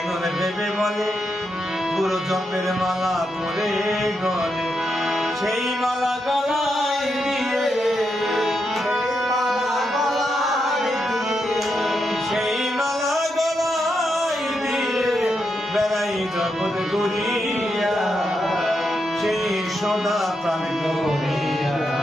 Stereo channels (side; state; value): both; normal; correlation 0.83